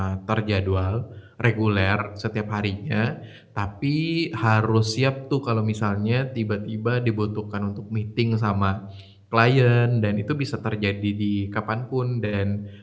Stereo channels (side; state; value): both; identical; correlation 1.00